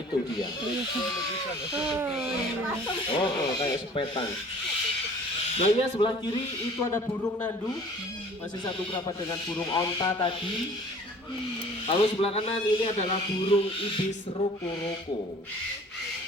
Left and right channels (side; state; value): both; normal; correlation 0.49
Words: itu dia. Kayak sepetan. Nah ya sebelah kiri itu ada burung nandu, masih satu kerabat dengan burung onta tadi. Lalu sebelah kanan ini adalah burung ibis roko-roko.